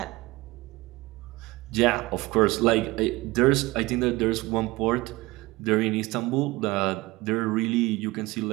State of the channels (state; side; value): quieter; left; 21.0 dB